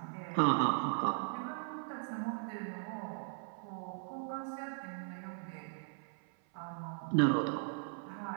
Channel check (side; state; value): left; silent; 52 dB below the other